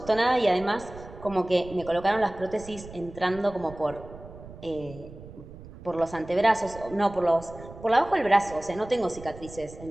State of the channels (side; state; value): right; noise; rumble, 16 dB below the sound